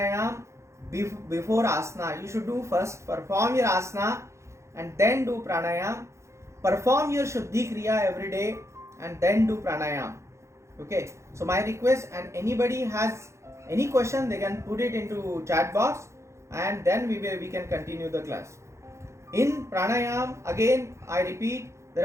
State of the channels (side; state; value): left; late; 0.14 ms